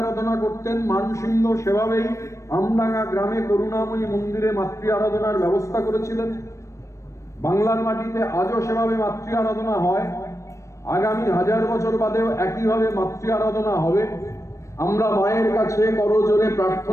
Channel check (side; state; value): right; late; 0.15 ms